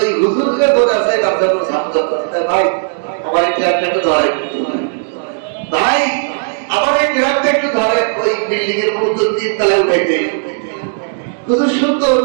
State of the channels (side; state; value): left; silent; digital silence